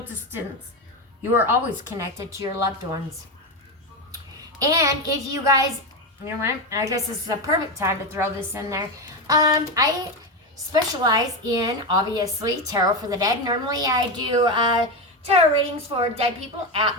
distance, you are always connected to your loved ones. And if you guys, you know what, I guess this is a perfect time to throw this in there. I specialize in, obviously, tarot for the dead. Normally I do tarot readings for dead people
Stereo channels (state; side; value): normal; both; correlation 0.14